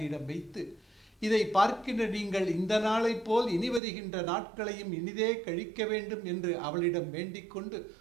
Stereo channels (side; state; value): left; drops out; at 3.8 s